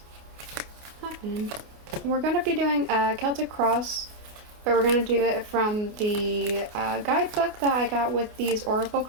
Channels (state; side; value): late; left; 28 ms